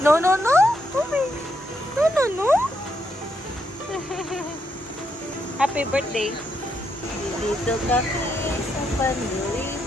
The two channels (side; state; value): both; normal; correlation 0.79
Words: No, no, no. Oh my. No, no, no. Happy birthday. Dito kami sa